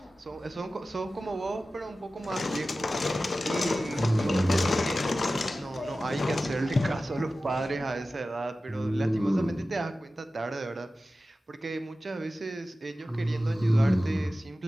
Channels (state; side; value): normal; both; correlation 0.95